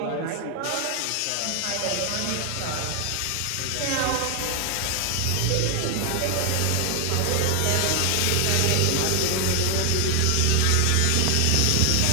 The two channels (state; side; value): different; both; correlation 0.00